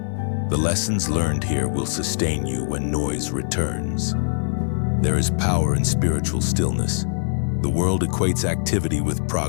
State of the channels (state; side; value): silent; right; 57 dB below the other